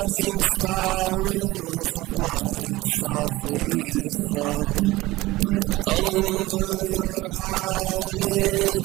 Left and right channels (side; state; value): left; quieter; 18.9 dB